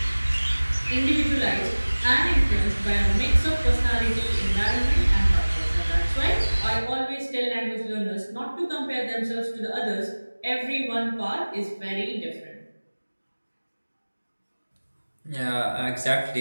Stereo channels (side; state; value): both; inverted; correlation -1.00